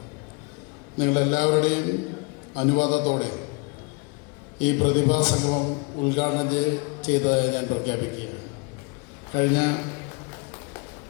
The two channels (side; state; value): right; quieter; 31.4 dB